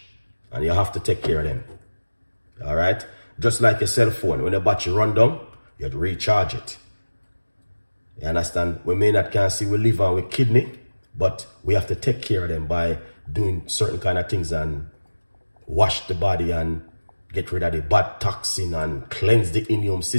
And you have to take care of them. All right? Just like your cell phone. When the battery run down, you have to recharge it. You understand? We may not can see with liver and with kidney, but we have to take care of them by doing certain kind of things and wash the body and get rid of the bad toxin and cleanse the immune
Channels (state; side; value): inverted; both; correlation -1.00